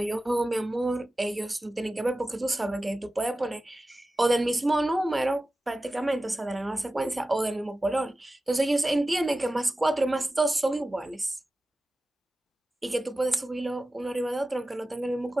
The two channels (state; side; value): normal; both; correlation 0.95